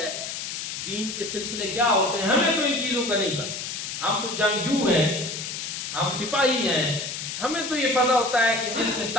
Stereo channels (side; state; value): left; noise; hiss, 6 dB below the sound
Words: دین کے سلسلے کیا ہوتے ہیں، ہمیں تو ان چیزوں کا نہیں پتا، ہم تو جنگجو ہیں، ہم سپاہی ہیں، ہمیں تو یہ پتہ ہوتا ہے کہ جس میں